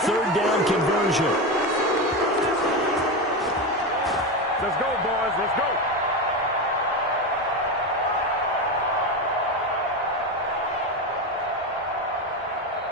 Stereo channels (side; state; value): both; normal; correlation 0.17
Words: down conversion. Let's go, boys. Let's go.